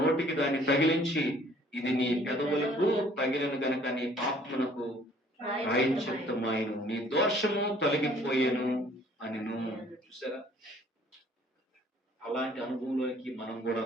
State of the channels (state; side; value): normal; both; correlation 0.57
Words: దాన్ని తగిలించి, ఇది నీ పెదవులకు తగిలిన గనక నీ పాపమునకు ప్రాయశ్చిత్తమాయెను, నీ దోషము తొలగిపోయేను అని. చూసారా? అలాంటి అనుభవంలోకి మనం కూడా